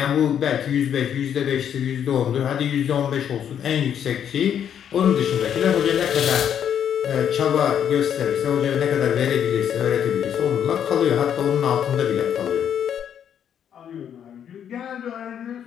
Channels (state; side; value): quieter; right; 9.0 dB